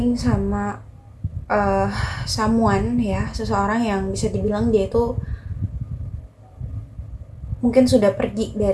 sama someone ya, seseorang yang bisa dibilang dia itu mungkin sudah pergi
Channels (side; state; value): both; identical; correlation 1.00